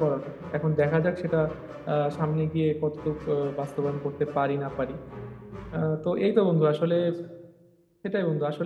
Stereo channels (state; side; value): identical; both; correlation 1.00